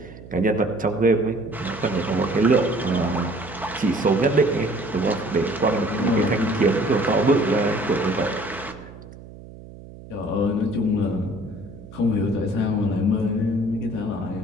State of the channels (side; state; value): right; noise; hum, 17 dB below the sound